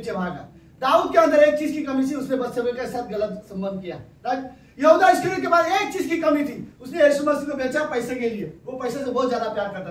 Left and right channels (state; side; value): identical; both; correlation 1.00